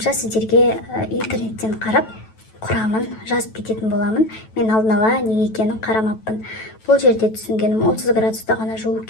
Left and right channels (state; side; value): late; right; 9.2 ms